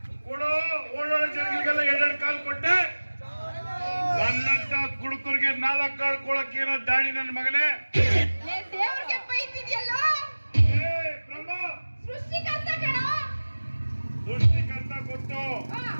ಕೊಡು. ಓಡಾಡೋ ಜನಗಳಿಗೆಲ್ಲ ಎರಡೆರಡು ಕಾಲ್ ಕೊಟ್ಟೆ. ನನ್ನಂತ ಕುಡುಕರಿಗೆ 4 ಕಾಳು ಕೊಳಕ್ಕೆ ಏನೋ ದಾಡಿ ನನ್ನ ಮಗನೇ. ದೇವ್ರಿಗೆ ಬೈತಿದ್ಯಲ್ಲೋ. ಏ ಬ್ರಹ್ಮ, ಸೃಷ್ಟಿಕರ್ತ ಕಣ. ಸೃಷ್ಟಿಕರ್ತ ಕೊಟ್ಟು ಹಾ.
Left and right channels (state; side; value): inverted; both; correlation -1.00